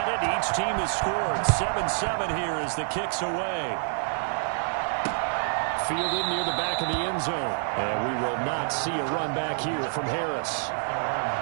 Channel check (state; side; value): silent; left; digital silence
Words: it. Each team has scored. 7-7 here as the kick's away. Fielded near the back of the end zone. And we will not see a run back here from Harris.